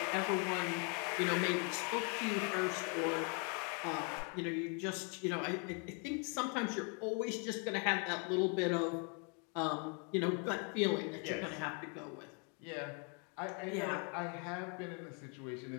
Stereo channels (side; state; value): right; quieter; 37.3 dB